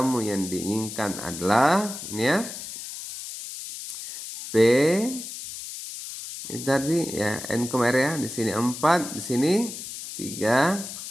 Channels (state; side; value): noise; left; hiss, 10 dB below the sound